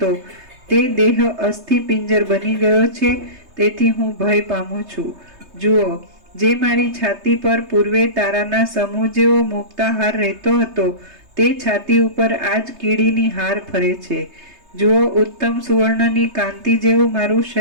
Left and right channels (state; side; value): late; left; 3.2 ms